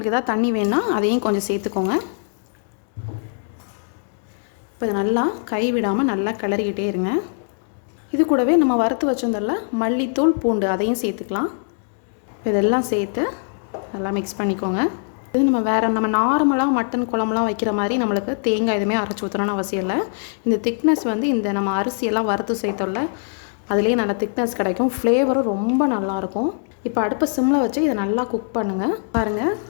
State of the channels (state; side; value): silent; right; digital silence